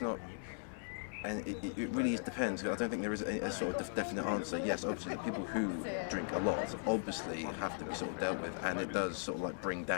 not, and it really depends. I don't think there is a sort of definite answer. Yes, obviously the people who drink a lot obviously have to be sort of dealt with, and it does sort of like bring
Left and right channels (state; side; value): silent; right; digital silence